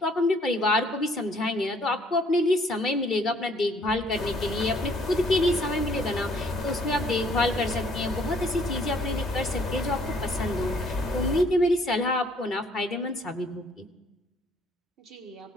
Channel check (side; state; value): both; normal; correlation 0.62